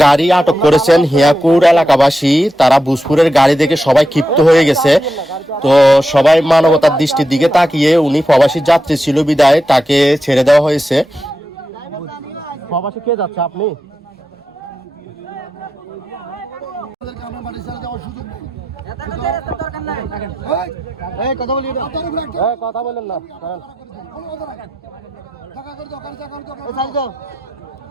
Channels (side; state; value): both; normal; correlation 0.87